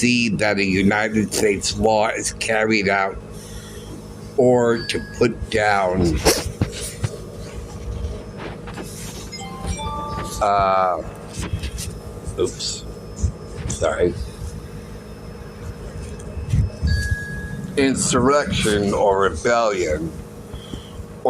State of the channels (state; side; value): identical; both; correlation 1.00